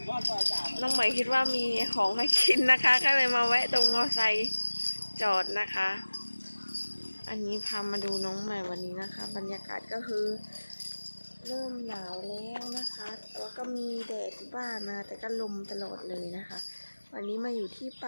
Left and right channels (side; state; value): both; inverted; correlation -1.00